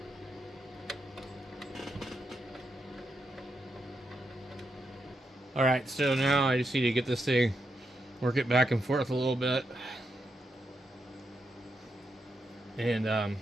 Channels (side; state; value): both; normal; correlation 0.83